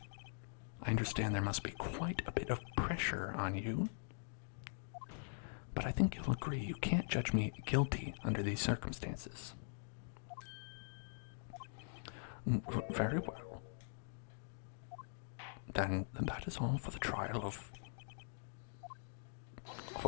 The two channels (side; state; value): right; silent; digital silence